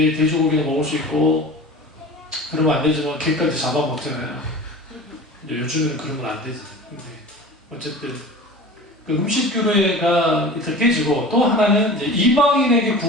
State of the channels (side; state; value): both; normal; correlation 0.37